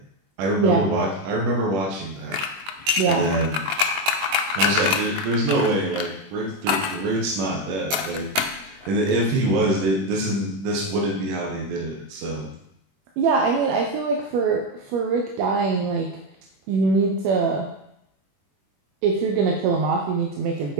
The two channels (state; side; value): late; left; 21 ms